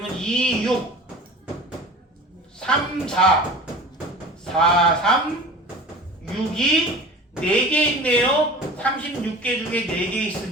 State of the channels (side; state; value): both; normal; correlation 0.39